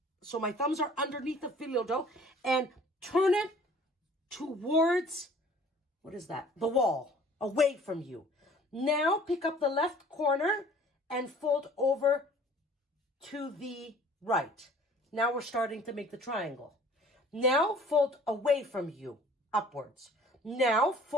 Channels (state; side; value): normal; both; correlation 0.51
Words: So my thumbs are underneath the Fyllo dough. And turn it towards, what is that? The wall, away from you. Now pick up the left corner and fold over to the right. Now we're starting to make the triangle. Now fold away from you, upwards. Now